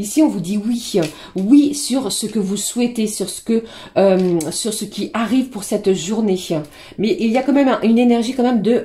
on vous dit oui, oui sur ce que vous souhaitez, sur ce qui arrive pour cette journée. Mais il y a quand même une énergie quand même de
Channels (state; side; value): identical; both; correlation 1.00